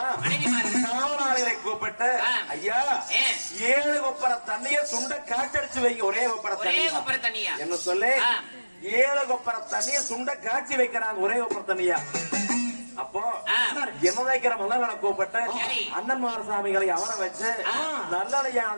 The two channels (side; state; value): both; inverted; correlation -1.00